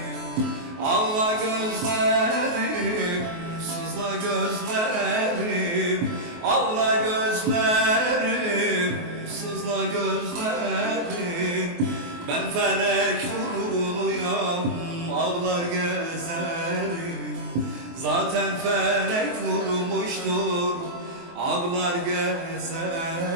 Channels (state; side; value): late; left; 23 ms